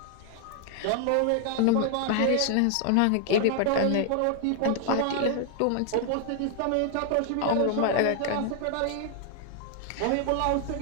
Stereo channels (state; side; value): different; both; correlation 0.00